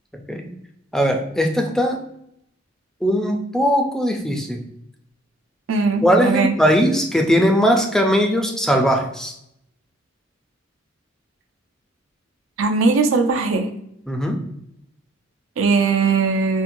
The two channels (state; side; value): normal; both; correlation 0.62